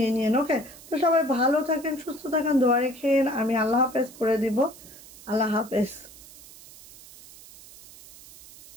নিয়েন। ওকে, তো সবাই ভালো থাকেন, সুস্থ থাকেন, দোয়া রেখেন। আমি আল্লাহ হাফেজ করে দিব। আল্লাহ হাফেজ।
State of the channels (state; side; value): noise; right; hiss, 20 dB below the sound